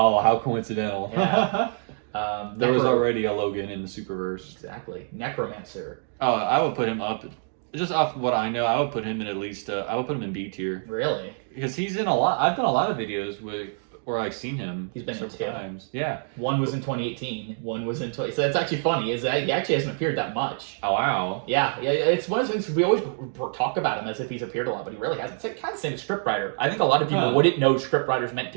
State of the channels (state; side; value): silent; left; digital silence